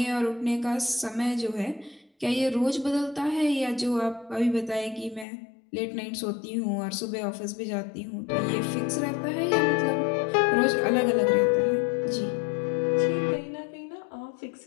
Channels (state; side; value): drops out; right; at 5.2 s